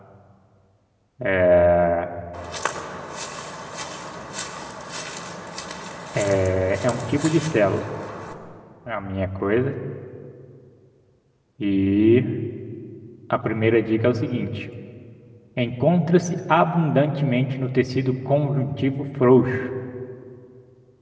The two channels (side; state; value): both; identical; correlation 1.00